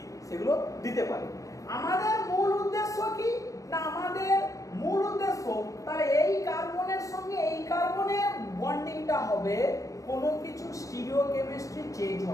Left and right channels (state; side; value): late; right; 0.16 ms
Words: সেগুলো দিতে পারে। আমাদের মূল উদ্দেশ্য কি না, আমাদের মূল উদ্দেশ্য তাহলে এই কার্বনের সঙ্গে এই কার্বনের বন্ডিংটা হবে, কোনো কিছু স্টিরিওকেমিস্ট্রি চেঞ্জ